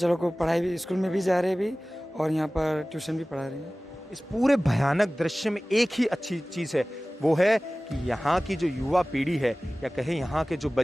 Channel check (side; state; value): both; normal; correlation 0.98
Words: लोग को पढ़ाई भी, स्कूल में भी जा रहे हैं अभी और यहाँ पर ट्यूशन भी पढ़ा रहे हैं। इस पूरे भयानक दृश्य में एक ही अच्छी चीज़ है, वो है कि यहाँ की जो युवा पीढ़ी है या कहें यहाँ के जो